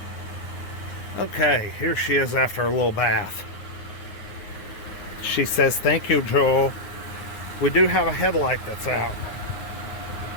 Okay, here she is after a little bath. She says, "Thank you, Joel." We do have a headlight that's out.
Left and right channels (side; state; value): right; late; 9.5 ms